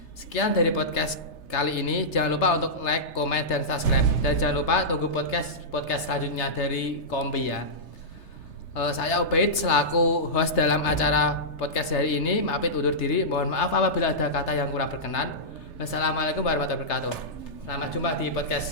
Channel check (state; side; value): late; right; 3.3 ms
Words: Sekian dari podcast kali ini. Jangan lupa untuk like, komen, dan subscribe. Dan jangan lupa tunggu podcast selanjutnya dari Kombi ya. Saya Ubaid selaku host dalam acara podcast hari ini. Maafin undur diri. Mohon maaf apabila ada kata yang kurang berkenan. Wassalamualaikum warahmatullahi wabarakatuh. Selamat jumpa di